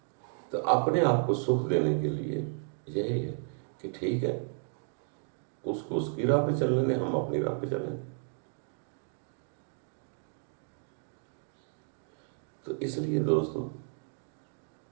तो अपने आप को सुख देने के लिए यही है कि ठीक है, उसको उसकी राह पे चलने दें, हम अपनी राह पे चलें। तो इसलिए दोस्तों,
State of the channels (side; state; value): left; silent; 56 dB below the other